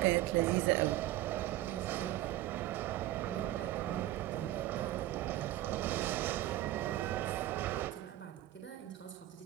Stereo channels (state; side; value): quieter; left; 15.1 dB